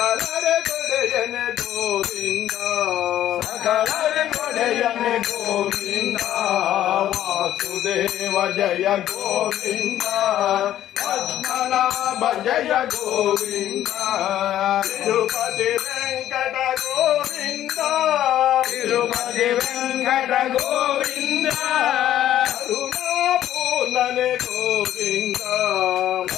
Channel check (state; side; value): quieter; right; 12.2 dB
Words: ಕೊಡೆಯನೆ ಗೋವಿಂದ ಸಕಲರ ಕೊಡೆಯನೆ ಗೋವಿಂದ ವಾಸುದೇವ ಜಯ ಗೋವಿಂದ ಪದ್ಮನಾಭ ಜಯ ಗೋವಿಂದ ತಿರುಪತಿ ವೆಂಕಟ ಗೋವಿಂದ ತಿರುಪತಿ ವೆಂಕಟ ಗೋವಿಂದ ಕರುಣಾಪೂರ್ಣನೆ ಗೋವಿಂದ